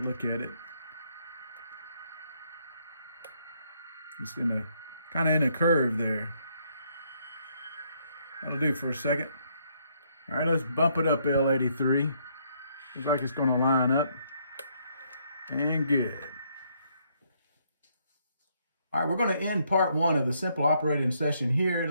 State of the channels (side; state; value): both; inverted; correlation -0.71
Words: look at it. It's in a kind of in a curve there. That'll do for a second. All right, let's bump it up, L83. Looks like it's going to line up. And good. All right, we're going to end part 1 of the simple operating session here. It